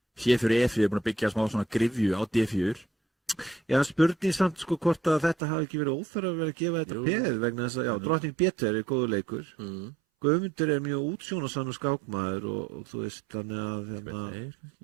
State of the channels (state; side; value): drops out; left; at 5.4 s